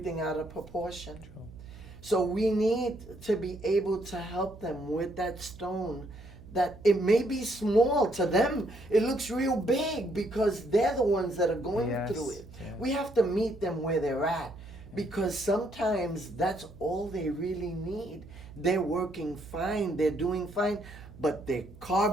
out of proportion. True. So we need to be able to help them with that stone, that it may be small to them. It looks real big because they're the ones that are going through it. Yes. We have to meet them where they're at, because sometimes that's all they really need. They're working fine, they're doing fine, but their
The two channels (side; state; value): right; noise; hum, 18 dB below the sound